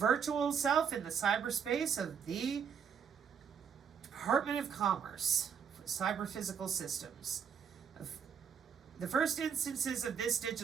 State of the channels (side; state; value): left; quieter; 7.1 dB